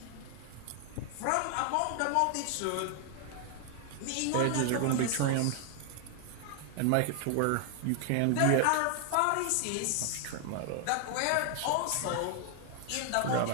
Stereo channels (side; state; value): both; different; correlation 0.00